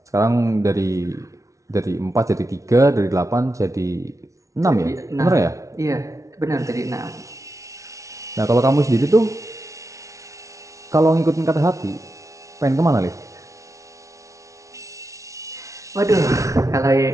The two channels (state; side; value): late; left; 0.15 ms